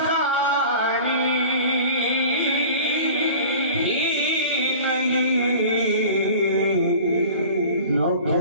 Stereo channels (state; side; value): inverted; both; correlation -0.41